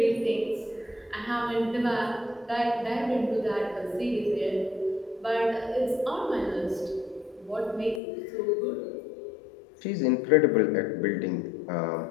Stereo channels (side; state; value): right; drops out; at 8.0 s